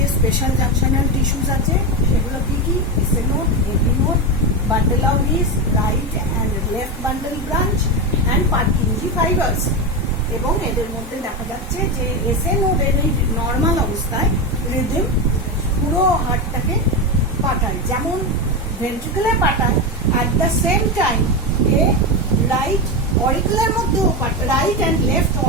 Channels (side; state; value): both; normal; correlation 0.14